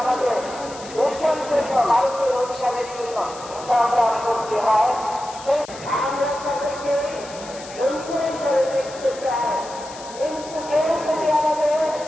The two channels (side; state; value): left; noise; hiss, 16 dB below the sound